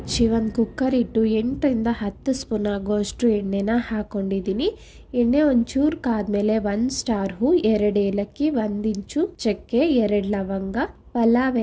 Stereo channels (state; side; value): identical; both; correlation 1.00